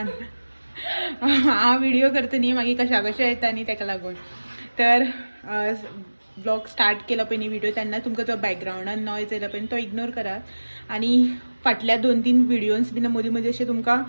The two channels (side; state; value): both; inverted; correlation -1.00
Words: हांव व्हिडिओ करता न्ही मागीर कशा कशें येता न्ही ताका लागून. तर ब्लॉग स्टार्ट केला पळय न्ही व्हिडिओ तेन्ना तुमकां जो बॅकग्रावंडान नॉयज येयला पळय तो इग्नोर करात. आणि फाटल्या 2-3 व्हिडिओज बीन मदीं मदीं अशें